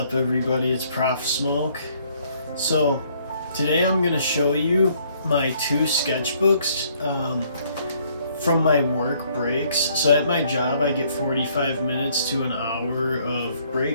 up everybody, it's Prof Smoke. So today I'm going to show you my two sketchbooks from my work breaks. So at my job I get 45 minutes to an hour of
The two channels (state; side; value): inverted; both; correlation -0.65